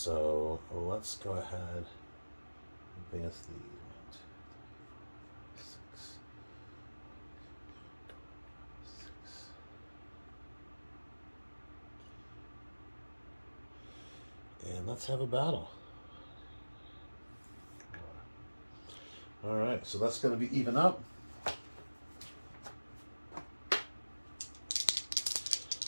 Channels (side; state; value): both; inverted; correlation -1.00